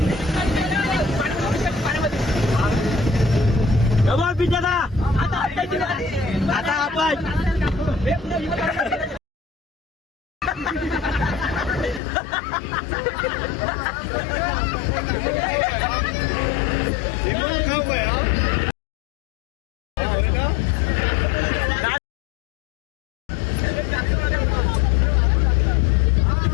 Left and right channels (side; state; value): right; drops out; at 12.0 s